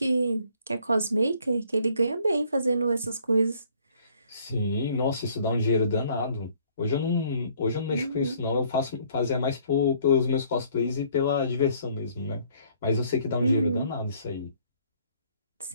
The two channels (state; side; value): inverted; both; correlation -0.61